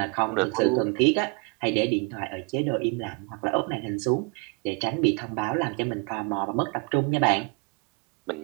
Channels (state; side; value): quieter; left; 32.8 dB